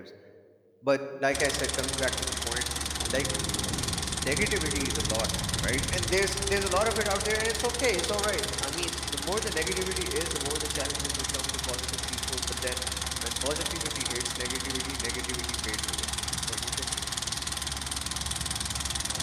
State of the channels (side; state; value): both; identical; correlation 1.00